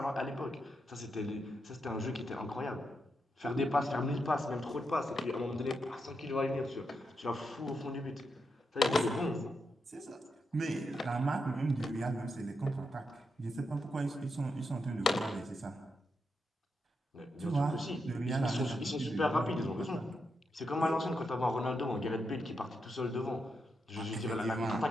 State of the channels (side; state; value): both; normal; correlation 0.84